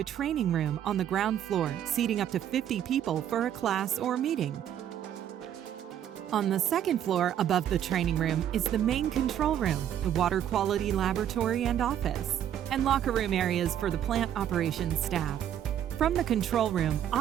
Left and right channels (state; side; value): quieter; left; 10.3 dB